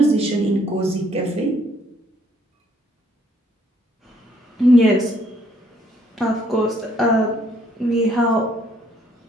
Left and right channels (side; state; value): both; normal; correlation 0.66